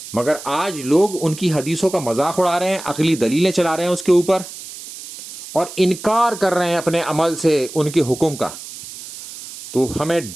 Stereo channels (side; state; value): right; noise; hiss, 13 dB below the sound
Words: مگر آج لوگ ان کی حدیثوں کا مذاق اڑا رہے ہیں، عقلی دلیلیں چلا رہے ہیں اس کے اوپر، اور انکار کر رہے ہیں اپنے عمل سے ان کے حکم کا۔ تو ہمیں